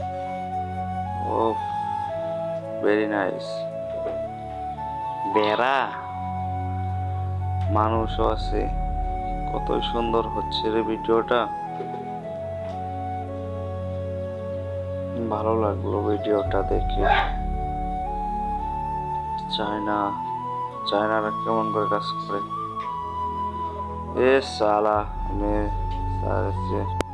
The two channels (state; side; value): identical; both; correlation 1.00